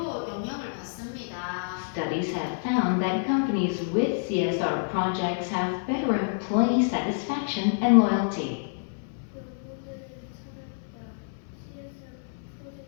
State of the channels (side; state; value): right; silent; 56 dB below the other